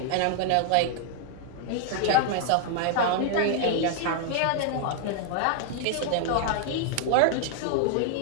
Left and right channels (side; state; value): both; different; correlation 0.00